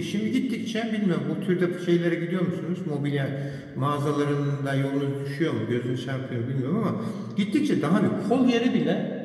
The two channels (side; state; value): both; identical; correlation 1.00